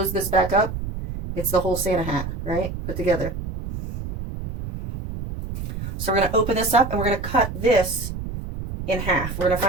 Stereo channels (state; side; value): noise; right; rumble, 7 dB below the sound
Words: this back up, it's the whole Santa hat, right? Put together. So we're going to open this up and we're going to cut this in half. We're going to